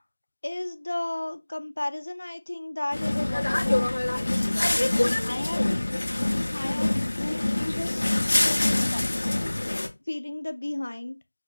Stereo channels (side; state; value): both; inverted; correlation -1.00